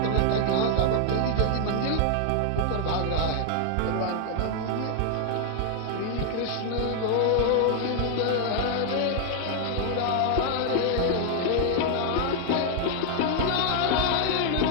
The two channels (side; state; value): both; different; correlation 0.00